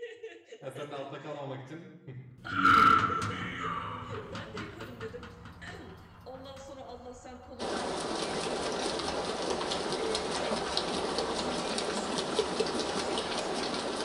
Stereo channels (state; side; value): identical; both; correlation 1.00